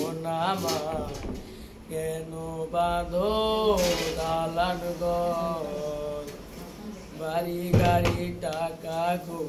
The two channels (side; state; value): both; identical; correlation 1.00